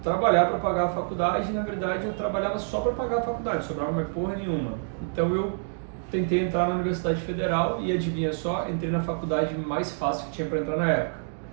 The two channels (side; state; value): left; silent; digital silence